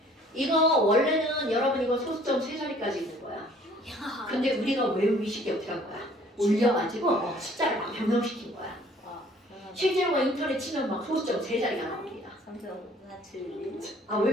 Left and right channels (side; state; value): both; normal; correlation 0.56